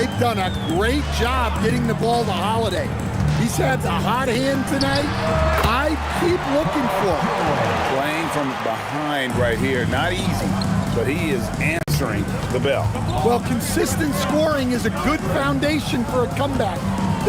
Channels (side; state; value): both; identical; correlation 1.00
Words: done a great job getting the ball to Holiday. He's had a hot hand tonight. I keep looking for him. Playing from behind right here. Not easy, but he is answering the bell. Well, consistent scoring is a good foundation for a comeback.